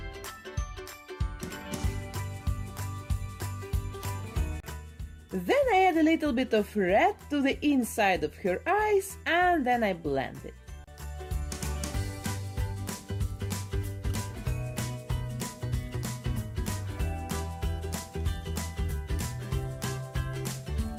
Then I add a little bit of red to the inside of her eyes and then I blend it.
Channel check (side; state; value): both; identical; correlation 1.00